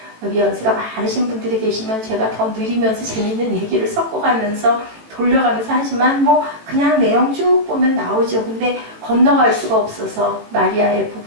여기 연세가 많으신 분들이 계시면 제가 더 느리면서 재밌는 얘기를 섞어가면서 돌려가면서 하지만 뭐 그냥 내용 쭉 보면 나오죠. 근데 건너갈 수가 없어서 마리아의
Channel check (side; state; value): left; late; 18 ms